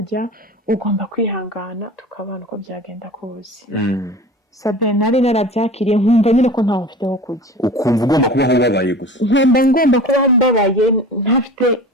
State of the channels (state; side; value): normal; both; correlation 0.38